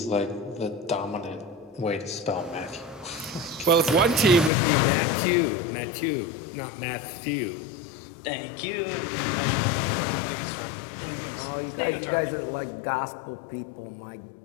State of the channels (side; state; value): right; drops out; at 4.5 s